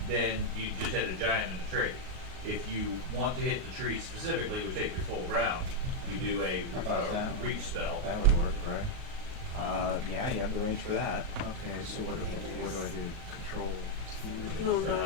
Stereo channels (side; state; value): left; late; 38 ms